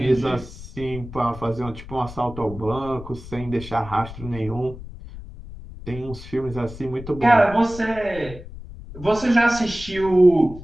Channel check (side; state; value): left; noise; rumble, 14 dB below the sound